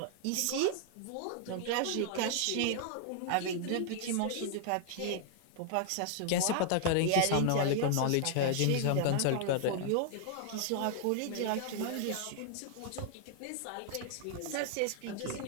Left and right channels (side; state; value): both; different; correlation -0.01